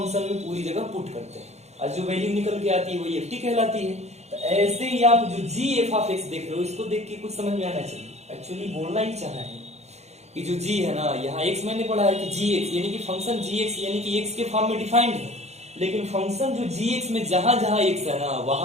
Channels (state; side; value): late; left; 0.32 ms